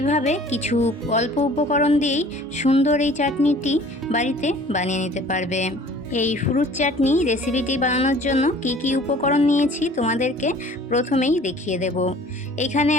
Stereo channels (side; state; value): both; normal; correlation 0.50